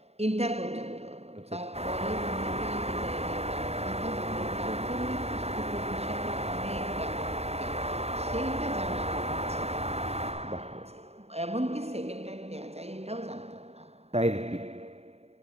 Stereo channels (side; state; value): left; late; 0.30 ms